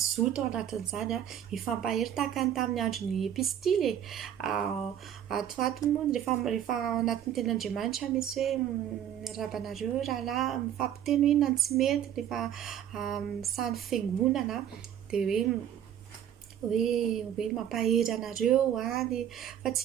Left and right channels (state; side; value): quieter; left; 10.1 dB